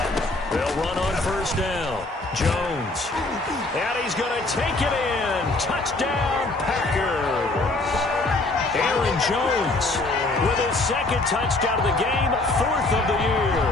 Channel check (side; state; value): right; quieter; 3.0 dB